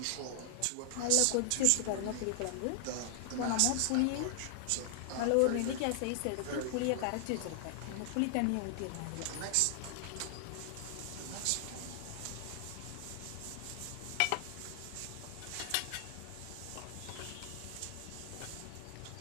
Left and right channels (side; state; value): both; different; correlation -0.01